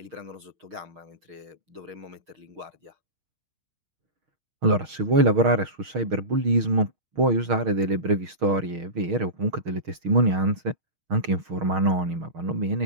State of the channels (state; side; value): late; left; 6.4 ms